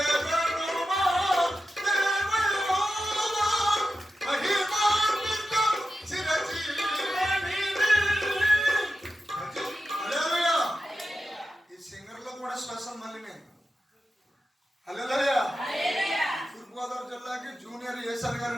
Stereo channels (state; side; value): normal; both; correlation 0.91